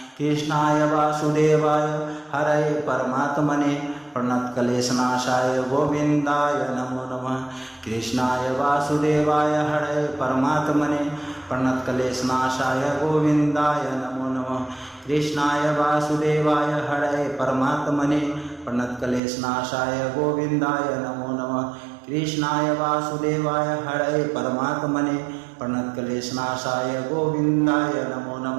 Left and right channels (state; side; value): drops out; left; at 19.2 s